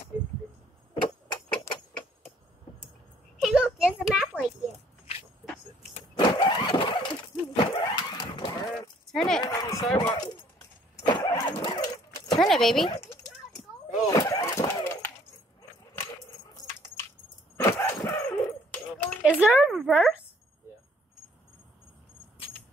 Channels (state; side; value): normal; both; correlation 0.61